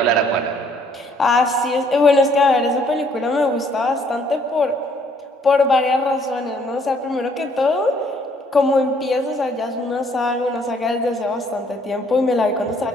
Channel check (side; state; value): both; normal; correlation 0.64